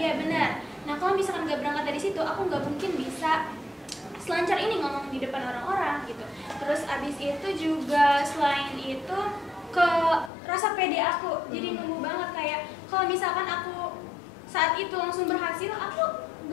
benar. Nah kalau misalkan nggak berangkat dari situ, aku nggak mungkin bisa selancar ini ngomong di depan orang-orang gitu. Terus abis itu juga selain itu ke rasa pede aku jadi numbuh banget, kayak kalau misalkan aku saat itu langsung berhasil, aku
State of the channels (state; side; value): drops out; right; at 10.3 s